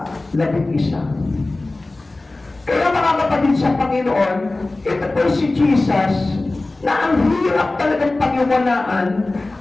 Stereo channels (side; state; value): right; quieter; 3.0 dB